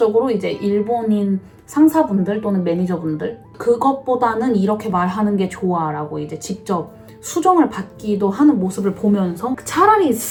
이제 일본인 상사분들 또는 매니저분들 그것보다는 이렇게 말하는 게 좋아 라고 이제 직접 수정을 받기도 하는 모습을 보면서 차라리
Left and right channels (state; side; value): identical; both; correlation 1.00